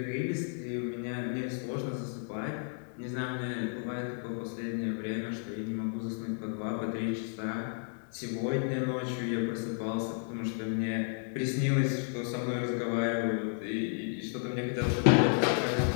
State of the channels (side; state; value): right; silent; 56 dB below the other